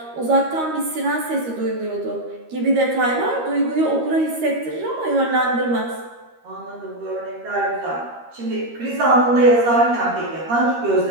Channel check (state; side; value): late; left; 13 ms